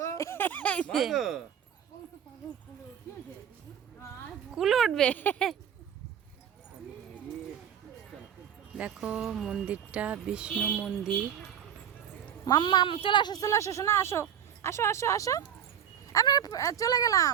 কুলে উঠবে। দেখো মন্দিরটা বিষ্ণু মন্দির। মাম্মা চলে আসো শোনা, আসো আসো আসো আসো। আমি চলে গেলাম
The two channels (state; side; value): quieter; left; 9.2 dB